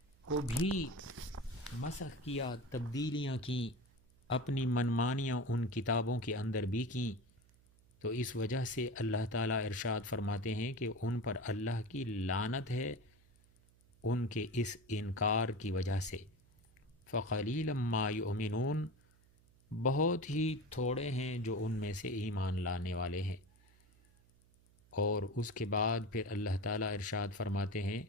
کو بھی مسخ کیا، تبدیلیاں کیں، اپنی منمانیاں ان کتابوں کے اندر بھی کیں۔ تو اس وجہ سے اللہ تعالیٰ ارشاد فرماتے ہیں کہ ان پر اللہ کی لعنت ہے ان کے اس انکار کی وجہ سے۔ فقلیلا ما یؤمنون، بہت ہی تھوڑے ہیں جو ان میں سے ایمان لانے والے ہیں۔ اور اس کے بعد پھر اللہ تعالیٰ ارشاد فرماتے ہیں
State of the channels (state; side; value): noise; right; hum, 29 dB below the sound